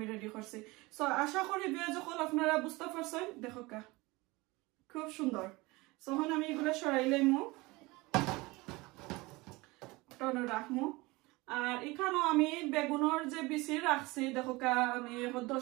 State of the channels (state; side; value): quieter; left; 22.8 dB